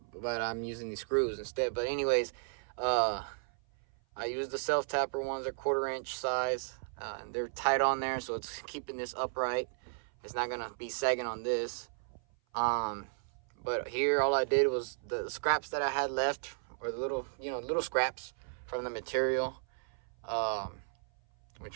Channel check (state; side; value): silent; left; 55 dB below the other